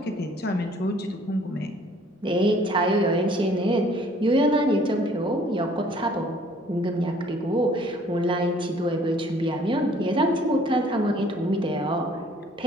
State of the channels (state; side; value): normal; both; correlation 0.57